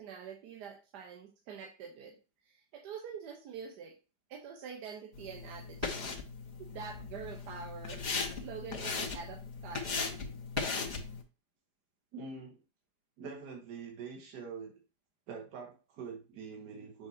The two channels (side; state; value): left; late; 4.9 ms